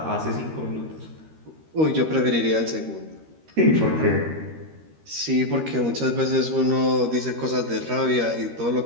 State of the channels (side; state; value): left; late; 13 ms